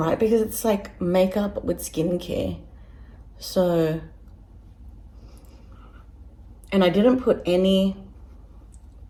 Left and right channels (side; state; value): both; identical; correlation 1.00